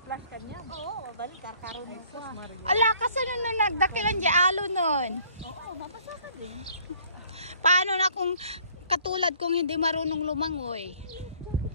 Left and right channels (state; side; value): inverted; both; correlation -0.58